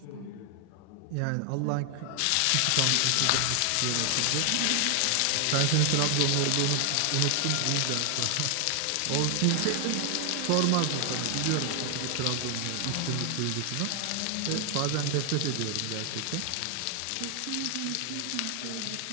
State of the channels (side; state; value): both; different; correlation 0.00